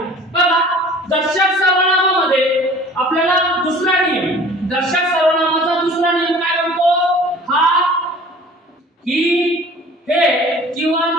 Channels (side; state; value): both; normal; correlation 0.47